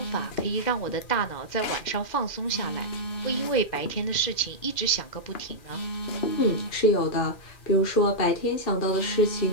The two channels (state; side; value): late; right; 2.4 ms